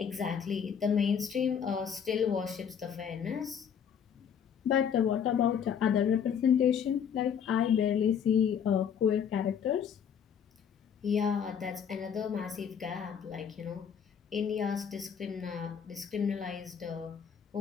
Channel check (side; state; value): right; quieter; 7.7 dB